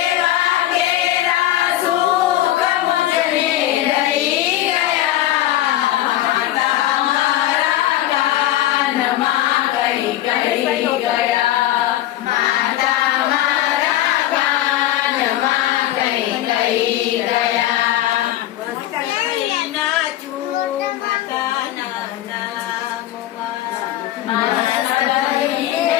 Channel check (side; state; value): right; quieter; 13.9 dB